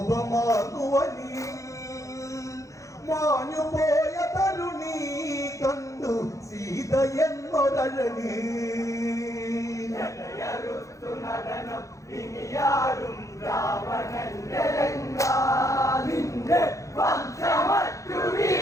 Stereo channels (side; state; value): right; late; 0.15 ms